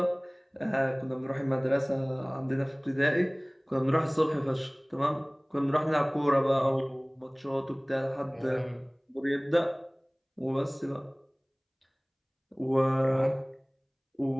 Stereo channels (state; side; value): identical; both; correlation 1.00